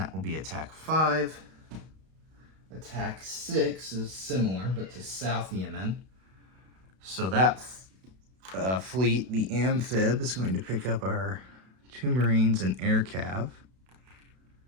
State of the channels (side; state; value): left; late; 32 ms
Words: will be attack 5. Attack 6 is similar, but to South Yemen. So that fleet, the amphib, is going to pick up our 2 Marines and air cav